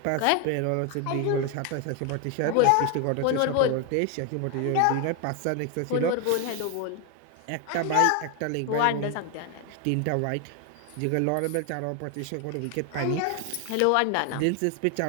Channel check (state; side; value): different; both; correlation 0.01